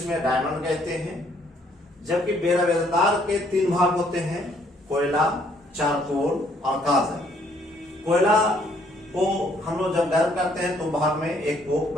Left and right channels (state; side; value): normal; both; correlation 0.66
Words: में डायमंड कहते हैं, जबकि बेरवेदार के 3 भाग होते हैं, कोयला, चारकोल और काजल। कोयला को हम लोग जब गर्म करते हैं तो भाग में एक कोक